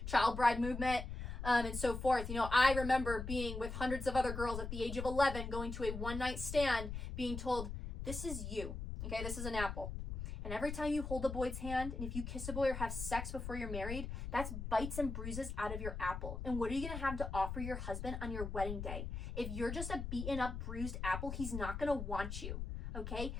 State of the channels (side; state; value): left; noise; rumble, 5 dB below the sound